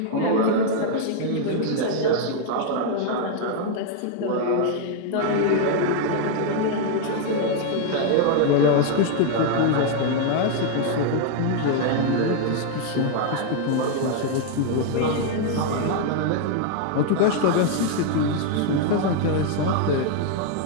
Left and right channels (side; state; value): both; different; correlation 0.00